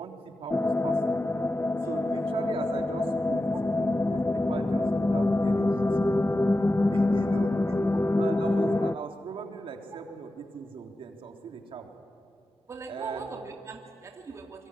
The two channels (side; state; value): both; normal; correlation 0.92